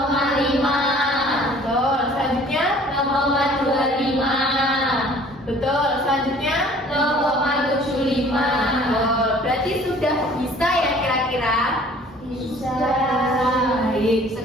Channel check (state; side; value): normal; both; correlation 0.52